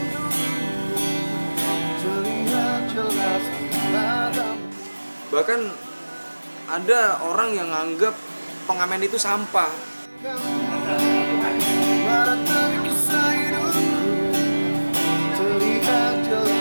Bahkan ada orang yang nganggap pengamen itu sampah.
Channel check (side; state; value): both; inverted; correlation -1.00